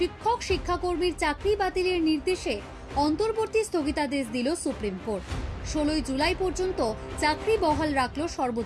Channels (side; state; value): both; identical; correlation 1.00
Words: শিক্ষাকর্মীর চাকরি বাতিলের নির্দেশে অন্তর্বর্তী স্থগিতাদেশ দিল সুপ্রিম কোর্ট। 16 জুলাই পর্যন্ত চাকরি বহাল রাখল